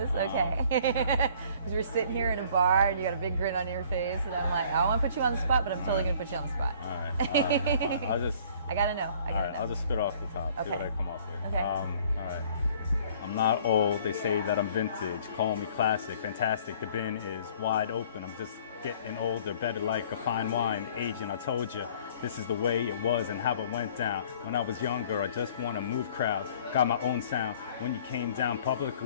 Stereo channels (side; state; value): both; inverted; correlation -0.54